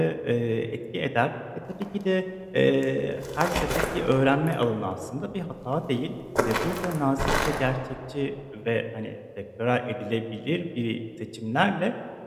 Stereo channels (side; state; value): both; identical; correlation 1.00